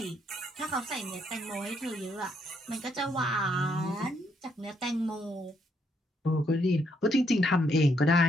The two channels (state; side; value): normal; both; correlation 0.74